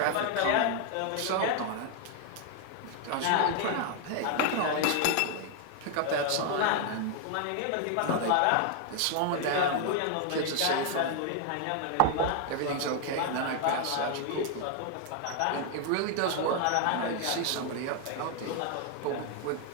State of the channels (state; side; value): different; both; correlation 0.00